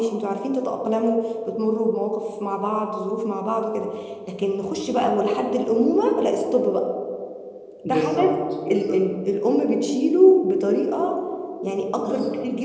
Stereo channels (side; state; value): both; identical; correlation 1.00